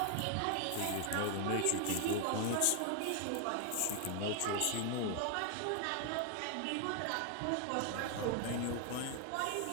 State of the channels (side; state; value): both; different; correlation 0.00